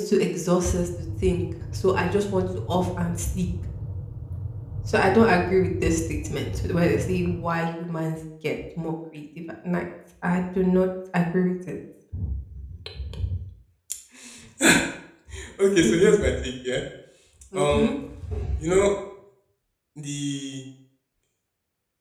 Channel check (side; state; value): both; identical; correlation 1.00